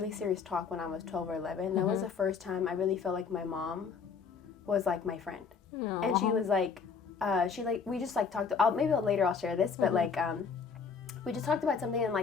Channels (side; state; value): right; quieter; 5.7 dB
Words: serious talk when I was 12 or 11. That was the first time I really felt like my mom was like my friend. Aww. And she was like, we just like talked, maybe later I'll share this, but like, we just talked about something and